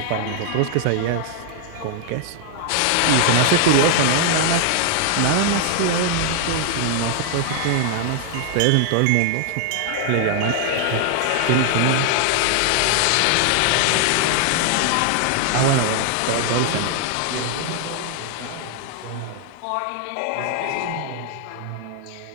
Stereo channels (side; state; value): both; different; correlation 0.00